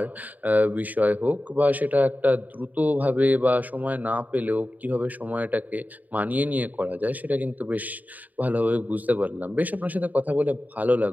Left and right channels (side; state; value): left; late; 0.079 ms